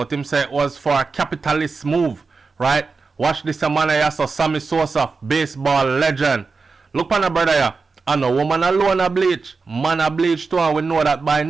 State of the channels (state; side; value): quieter; left; 4.5 dB